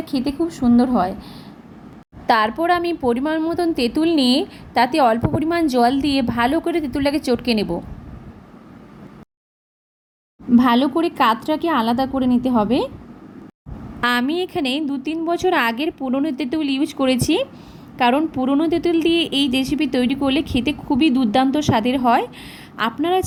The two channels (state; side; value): identical; both; correlation 1.00